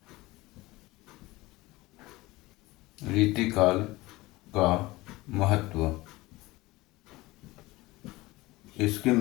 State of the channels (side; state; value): right; quieter; 20.3 dB